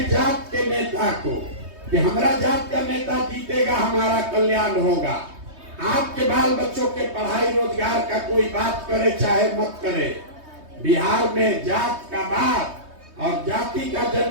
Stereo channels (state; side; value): late; left; 3.2 ms